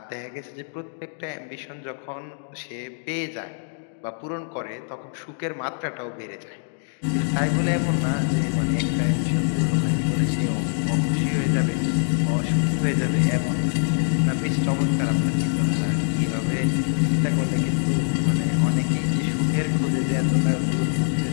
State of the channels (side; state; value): right; silent; digital silence